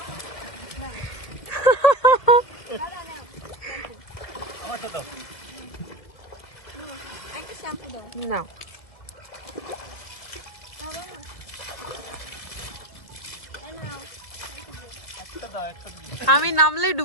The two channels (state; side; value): late; right; 1.7 ms